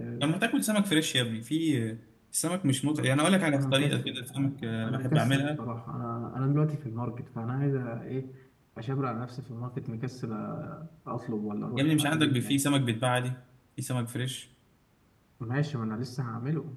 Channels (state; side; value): identical; both; correlation 1.00